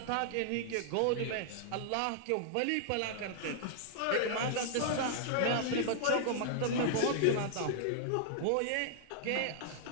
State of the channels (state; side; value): different; both; correlation -0.01